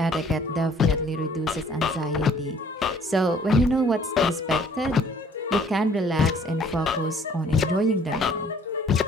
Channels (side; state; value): both; normal; correlation 0.58